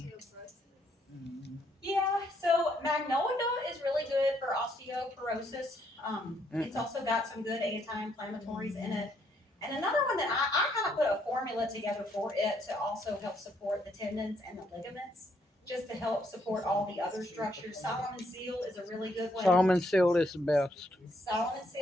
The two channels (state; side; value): normal; both; correlation 0.72